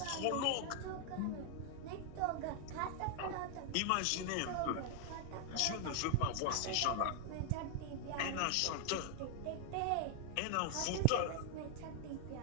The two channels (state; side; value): different; both; correlation 0.00